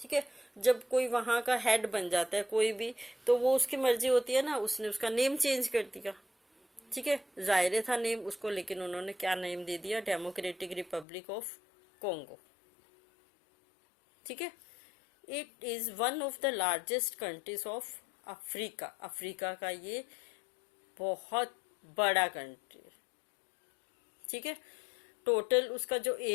है, जब कोई वहाँ का हेड बन जाता है कोई भी, तो वो उसकी मर्जी होती है ना, उसने उसका नेम चेंज कर दिया। ठीक है, जायरे था नेम उसको, लेकिन उन्होंने क्या नेम दे दिया, डेमोक्रेटिक रिपब्लिक ऑफ कॉन्गो। ठीक है, it is one of the largest countries of Africa. Africa का ये बहुत बड़ा कंट्री है। ठीक है, टोटल उसका जो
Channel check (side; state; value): right; drops out; at 11.1 s